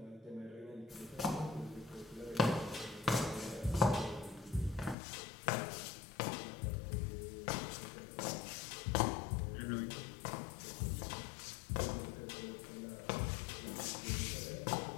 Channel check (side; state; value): right; drops out; at 5.0 s